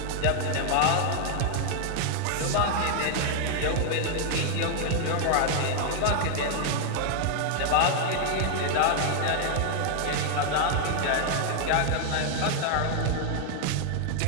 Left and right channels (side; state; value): both; different; correlation 0.00